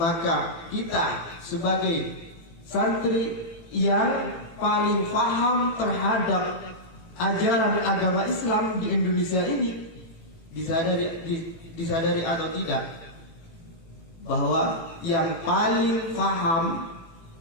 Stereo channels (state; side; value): late; right; 18 ms